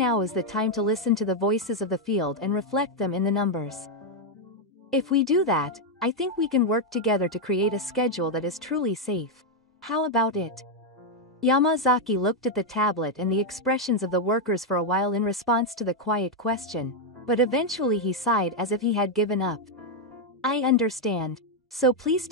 is the time to listen to the voices of the field and reflect them in the numbers. If we do that, I think we can work together to create a schedule that is truly safe. How about it? Yamazaki looked at the tablet and the expressions of the workers for a while in response to the quiet question, but eventually he sighed as if he had given up. I understand. So please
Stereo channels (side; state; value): both; normal; correlation 0.01